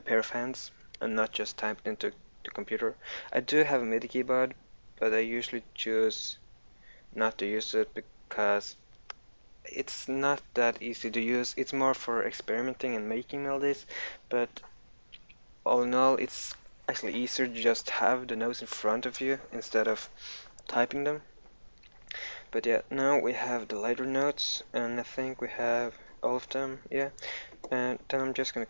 pair of hands and not just typed into the computer. I do have a MIDI keyboard, but I usually choose not to use it because it's not that easy to use. It's more for experimenting and making melodies, but all in all, it's actually easier to just have the notes in front of you instead of typing them. But yeah, now we have the lighter notes, and I think we have all of them, yeah. And then I'm just gonna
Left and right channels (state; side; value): inverted; both; correlation -1.00